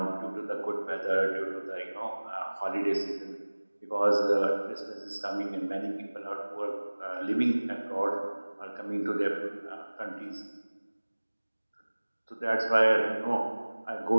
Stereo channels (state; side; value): inverted; both; correlation -1.00